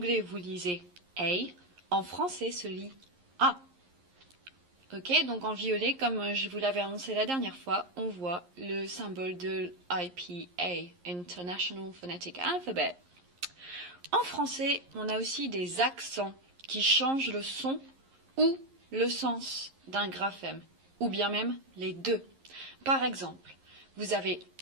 vous lisez A, en français se lit A. Ok, donc en violet, comme je vous l'avais annoncé la dernière fois, on voit le symbole de IPA, International Phonetic Alphabet. En français, on a aussi des accents qui changent le son ou le sens d'un graphème, ou bien même les deux. Par exemple, vous avez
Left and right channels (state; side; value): late; left; 11 ms